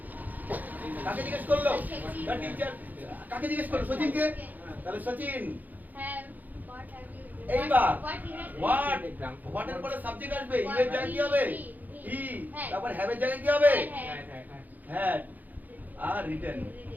কাকে জিজ্ঞেস করলো দ্য টিচার কাকে জিজ্ঞেস করলো সচিনকে তাহলে সচিন এইবার হোয়াট হোয়াটের পরে সাবজেক্ট আসবে ইভের জায়গায় কি হবে ই তারপর হ্যাভের জায়গায় কি হবে হ্যাঁ হ্যাঁ হ্যাঁ হ্যাড আর রিটেন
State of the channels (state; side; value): late; left; 0.082 ms